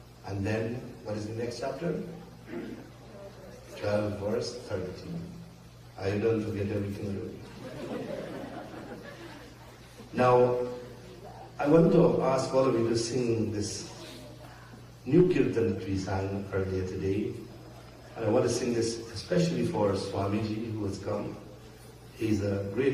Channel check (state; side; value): identical; both; correlation 1.00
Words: And then, what is the next chapter? 12, verse 13. I don't forget everything. Now, I want to ask all of you to sing this new kirtan that we sang earlier today. And I want to sing this especially for Swamiji, who has come. He's a